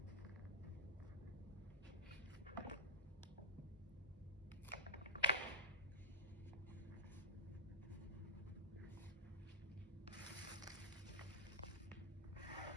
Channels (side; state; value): both; normal; correlation -0.13